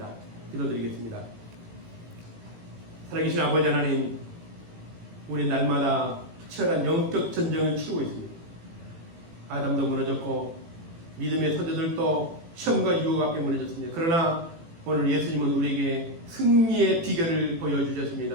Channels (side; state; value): left; late; 18 ms